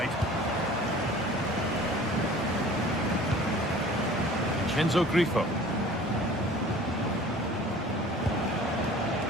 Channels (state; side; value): normal; both; correlation 0.46